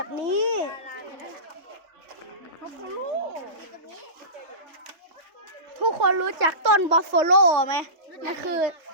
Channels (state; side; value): late; left; 3.2 ms